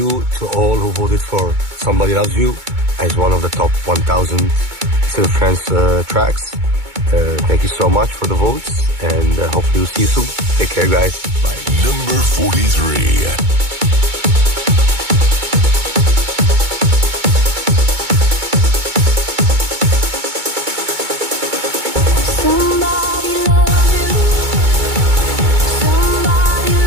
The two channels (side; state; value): left; late; 2.2 ms